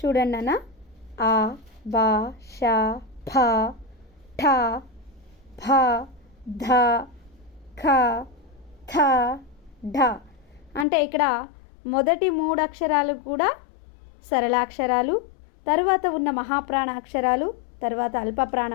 చూడండి అన్న, ఆ, బా, ష, భ, ఠ, భ, ధ, ఖ, థ, ఢ. అంటే ఇక్కడ మొదటి 3 అక్షరాలు కూడా సరళాక్షరాలు, తర్వాత ఉన్న మహాప్రాణ అక్షరాలు, తర్వాత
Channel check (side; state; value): right; drops out; at 10.9 s